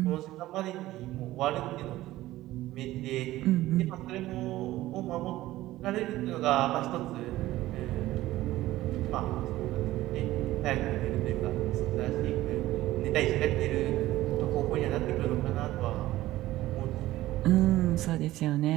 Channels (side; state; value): left; quieter; 16.1 dB